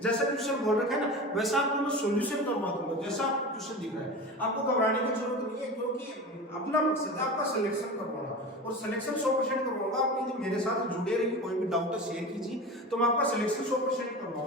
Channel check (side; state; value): both; normal; correlation 0.30